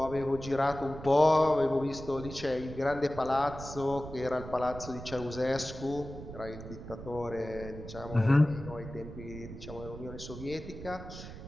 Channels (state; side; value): noise; right; rumble, 12 dB below the sound